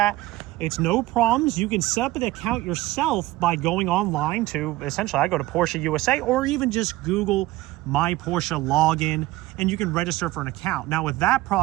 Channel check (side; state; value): left; quieter; 17.7 dB